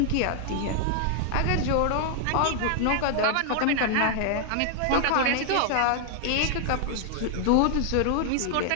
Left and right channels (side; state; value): both; different; correlation 0.00